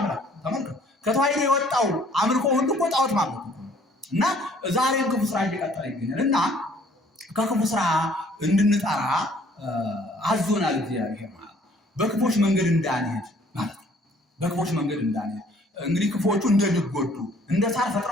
ተመልከቱ። ከተዋሕዶ የወጣው አምልኮ ሁሉ እኮ ጣዖት ማምለክ እና ዛሬም ክፉ ስራ እየቀጠለ ይገኛል እና ከክፉ ስራ እንድንጠራ አዞናል እግዚአብሔር ማለት በክፎች መንገድ እንዳንሄድ ማለት ነው። በክፎች መንገድ እንዳንሄድ እንግዲህ ክፎቹ እንደሚጎዱ እንደ ሳር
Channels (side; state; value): both; normal; correlation 0.58